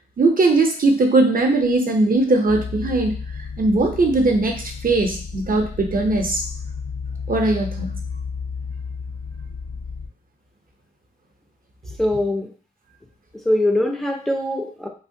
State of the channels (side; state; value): both; normal; correlation 0.67